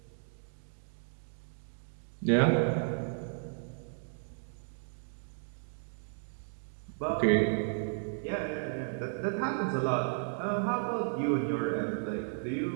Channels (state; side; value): silent; left; digital silence